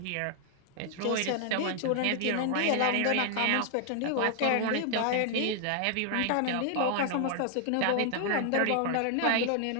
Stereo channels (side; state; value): both; different; correlation 0.00